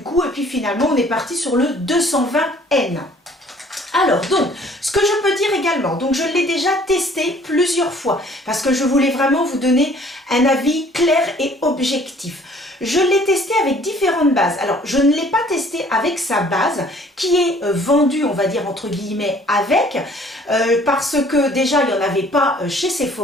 et puis finalement on est parti sur le 220N. Alors donc, ce que je peux dire également, donc je l'ai déjà testé plusieurs fois parce que je voulais vraiment vous donner un avis clair et objectif. Je l'ai testé avec différentes bases. Alors, je ne l'ai pas testé avec sa base qui est vendue, on va dire entre guillemets, avec, parce que déjà, il n'y en avait pas chez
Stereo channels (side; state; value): both; normal; correlation 0.56